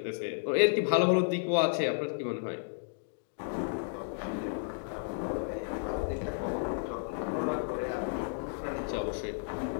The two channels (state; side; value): silent; right; digital silence